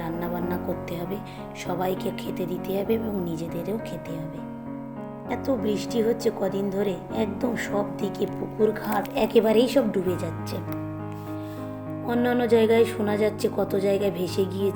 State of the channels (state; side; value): identical; both; correlation 1.00